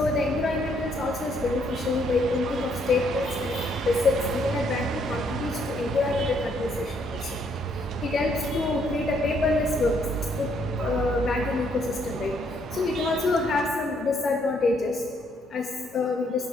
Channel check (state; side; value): normal; both; correlation 0.70